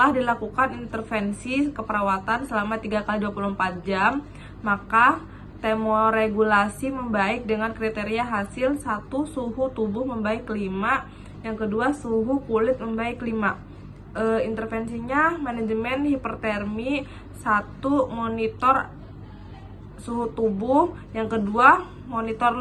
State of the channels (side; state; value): both; identical; correlation 1.00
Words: dilakukan intervensi keperawatan selama 3 kali 24 jam, maka termoregulasi membaik dengan kriteria hasil 1. Suhu tubuh membaik 5, yang kedua suhu kulit membaik 5. Intervensinya manajemen hipertermi 1. Monitor suhu tubuh, yang kedua monitor